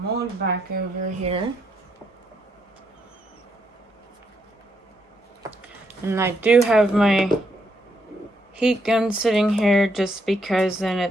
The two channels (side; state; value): both; normal; correlation 0.76